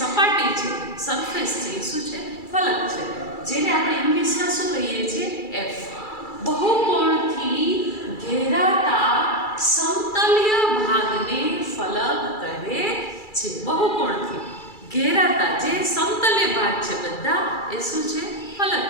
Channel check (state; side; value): late; right; 2.3 ms